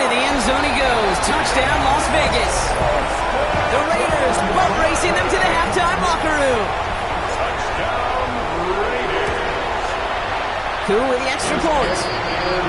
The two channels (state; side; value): identical; both; correlation 1.00